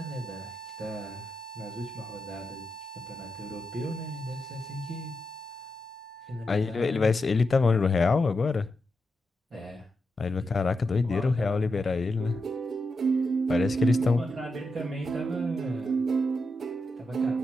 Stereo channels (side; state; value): both; normal; correlation 0.86